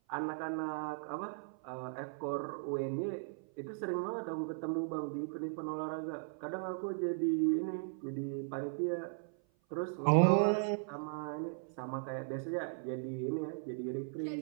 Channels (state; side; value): silent; left; 53 dB below the other